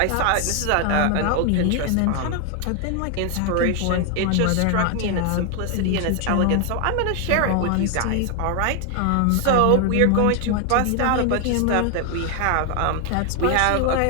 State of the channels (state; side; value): different; both; correlation 0.00